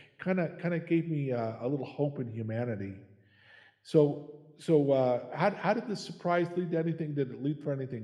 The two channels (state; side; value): identical; both; correlation 1.00